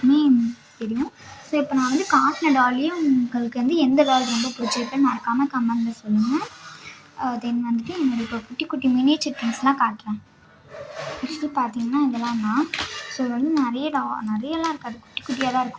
தெரியும். ஸோ இப்போ நான் வந்து காட்டின டால்லையே உங்களுக்கு வந்து எந்த டால் ரொம்ப பிடிச்சிருக்குன்னு மறக்காமல் கமெண்டில் சொல்லுங்கள். தென் வந்துட்டு என்னோடய இப்போ குட்டி குட்டி மினியேச்சர் திங்ஸ்லாம் காட்டுறேன். ஆக்சுவலி பார்த்தீங்கன்னா இதெல்லாம் தான். ஸோ இது வந்து நிறையலாம் இருக்காது, குட்டி குட்டியாக தான்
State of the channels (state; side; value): identical; both; correlation 1.00